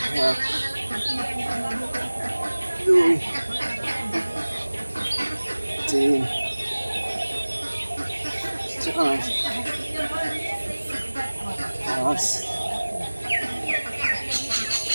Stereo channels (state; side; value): inverted; both; correlation -1.00